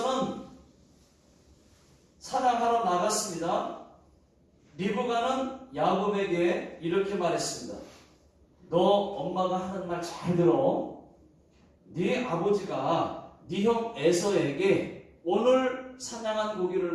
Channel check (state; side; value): identical; both; correlation 1.00